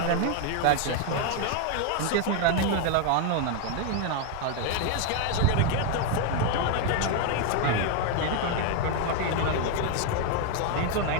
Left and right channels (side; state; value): both; different; correlation 0.01